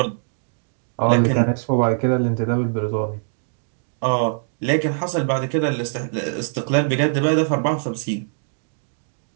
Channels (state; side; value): silent; left; digital silence